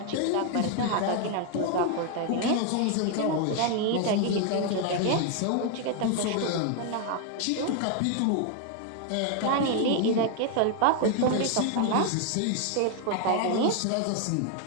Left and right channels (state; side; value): different; both; correlation 0.01